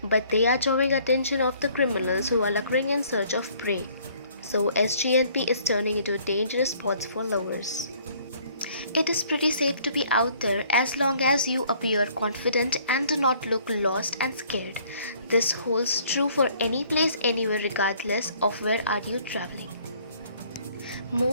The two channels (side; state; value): both; inverted; correlation -0.60